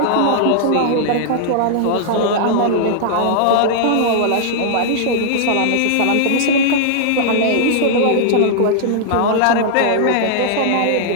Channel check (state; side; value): different; both; correlation -0.01